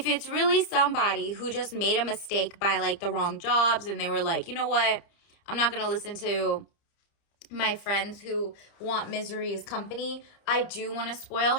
it's really somebody who just made a mistake by like the wrong jobs, and they were like, you know what, I'm not going to listen to my friends who want misery as company. I do want to spoil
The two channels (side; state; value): right; late; 30 ms